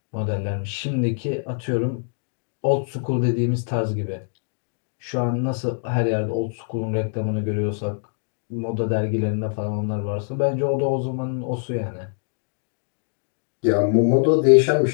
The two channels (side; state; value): right; silent; digital silence